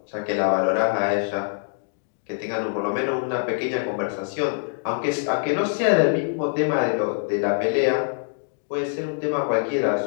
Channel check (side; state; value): right; silent; digital silence